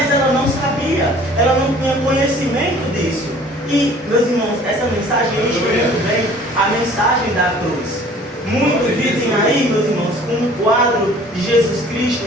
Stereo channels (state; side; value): normal; both; correlation 0.51